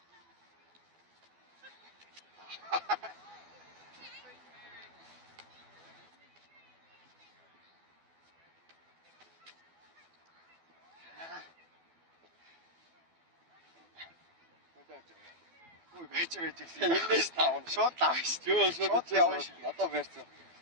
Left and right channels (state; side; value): late; left; 12 ms